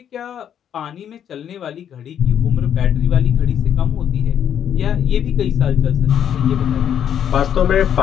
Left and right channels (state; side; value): quieter; right; 9.3 dB